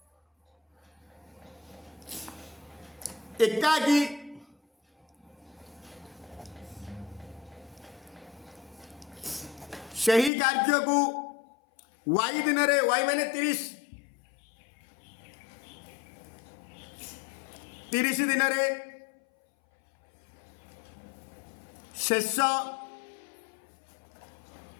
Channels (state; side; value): drops out; right; at 10.3 s